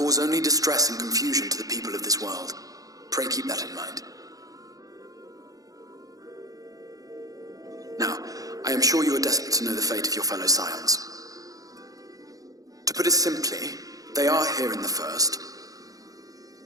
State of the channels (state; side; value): late; left; 0.17 ms